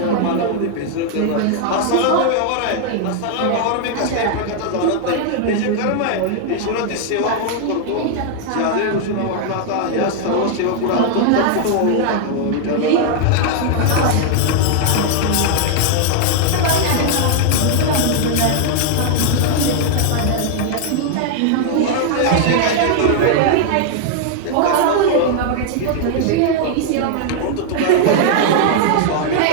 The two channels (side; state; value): both; different; correlation 0.00